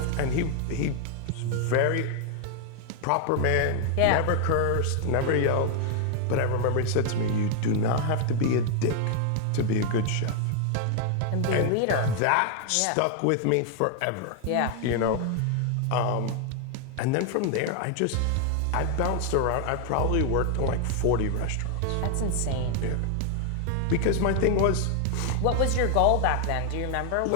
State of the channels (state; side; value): different; both; correlation 0.00